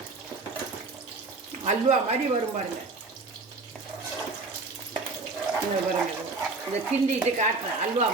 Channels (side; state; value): left; quieter; 3.6 dB